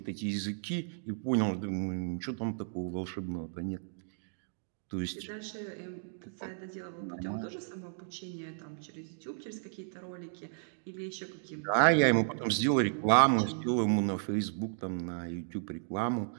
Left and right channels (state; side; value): silent; left; digital silence